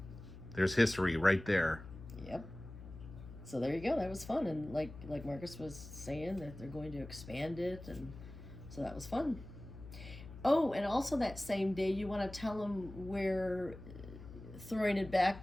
there's history right there. Yep. So there you go. That was fun. And like Marcus was saying, that they're going to expand it. And so that was fun. Oh, and also that same day, you want to tell them where, throwing it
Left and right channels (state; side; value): noise; left; hum, 14 dB below the sound